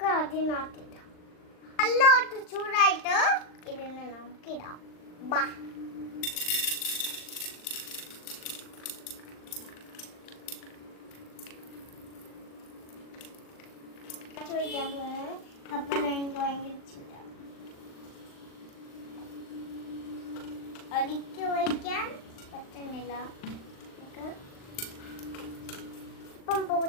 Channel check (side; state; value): right; late; 39 ms